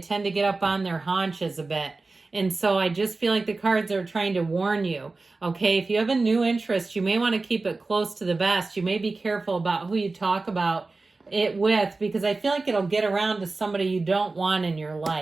to get up on their haunches a bit. And so I just feel like the cards are trying to warn you, okay? If you have a new interest, you may want to keep it close to the vest. You may be careful about who you talk about it with, because I feel like it'll get around to somebody you don't want in your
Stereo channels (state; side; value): quieter; left; 3.6 dB